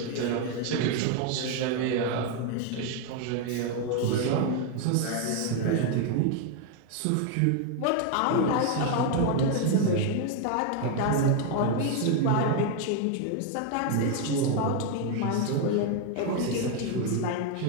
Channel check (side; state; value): both; different; correlation 0.01